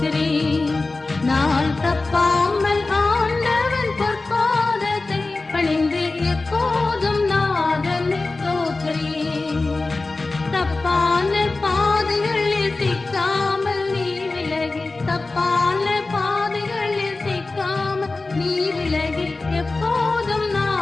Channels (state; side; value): quieter; right; 3.4 dB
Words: நாள் தப்பாமல் ஆண்டவன் பொற்பாதத்தை பணிந்து எப்போதும் நாதனை ஸ்தோத்திரி. தப்பான பாதைகளில் சிக்காமல் நீ விலகி, தப்பான பாதைகளில் சிக்காமல் நீ விலகி எப்போதும்